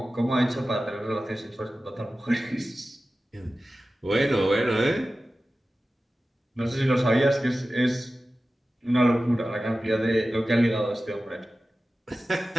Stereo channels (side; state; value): both; normal; correlation 0.95